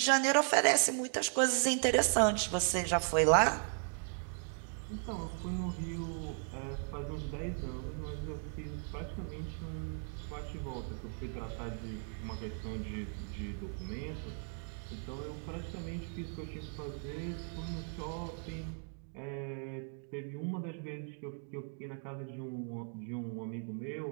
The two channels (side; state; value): left; silent; 53 dB below the other